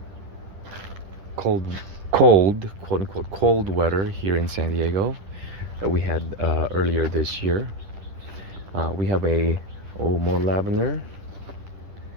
cold, quote unquote, cold weather here in San Diego that we had earlier this year. We have more lavender,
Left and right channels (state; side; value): late; left; 10 ms